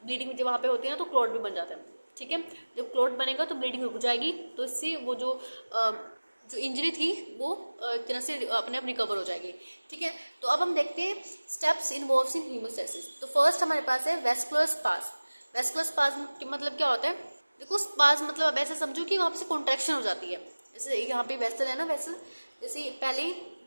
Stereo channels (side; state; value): both; inverted; correlation -1.00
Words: ब्लीडिंग जब वहाँ पे होती है ना तो क्लॉट भी बन जाता है, ठीक है। जब क्लॉट बनेगा तो ब्लीडिंग रुक जाएगी, तो इससे वो जो इंजरी थी वो एक तरह से अपने आप रिकवर हो जाएगी, ठीक है। तो अब हम देखते हैं स्टेप्स इन्वॉल्व्स इन हीमोस्टेसिस। तो फर्स्ट हमारे पास है वेस्कुलर स्पाज्म। वेस्कुलर स्पाज्म मतलब क्या होता है, देखो स्पाज्म मतलब अब ऐसे समझो कि वहाँ से कॉन्ट्रैक्शन हो जाती है। जैसे यहाँ पे वेसल है ना, वेसल जैसे पहले